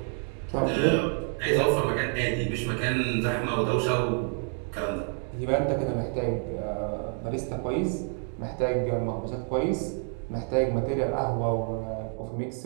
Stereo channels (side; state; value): left; quieter; 38.7 dB